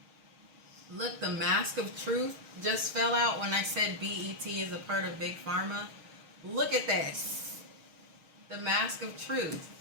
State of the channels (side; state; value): left; late; 6.4 ms